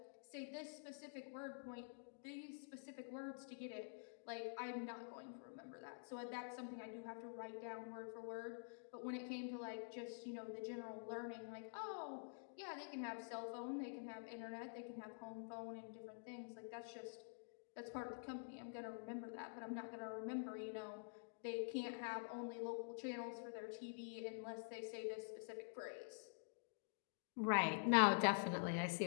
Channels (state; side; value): silent; right; digital silence